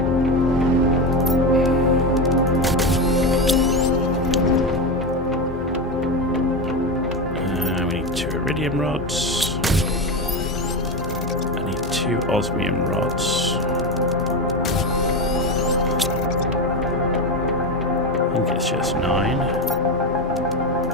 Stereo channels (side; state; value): both; normal; correlation 0.16